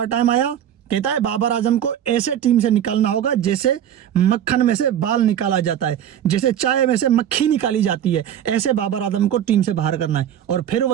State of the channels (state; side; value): quieter; left; 10.1 dB